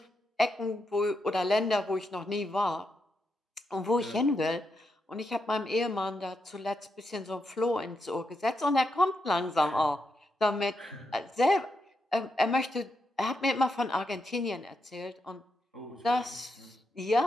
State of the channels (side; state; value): both; normal; correlation 0.83